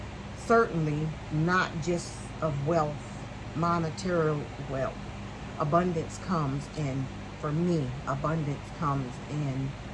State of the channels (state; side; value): identical; both; correlation 1.00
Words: certainly not just of wealth, monetary wealth. Abundance comes in, for me, abundance comes in